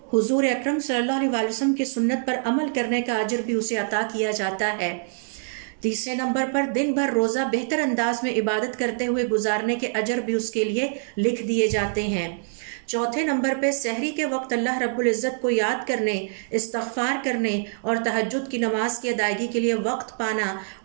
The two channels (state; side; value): silent; left; digital silence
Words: حضور اکرم صلی اللہ علیہ وسلم کی سنت پر عمل کرنے کا اجر بھی اسے عطا کیا جاتا ہے۔ تیسرے نمبر پر دن بھر روزہ بہتر انداز میں عبادت کرتے ہوئے گزارنے کے اجر بھی اس کے لیے لکھ دیے جاتے ہیں۔ چوتھے نمبر پہ سحری کے وقت اللہ رب العزت کو یاد کرنے، استغفار کرنے اور تہجد کی نماز کی ادائیگی کے لیے وقت پانا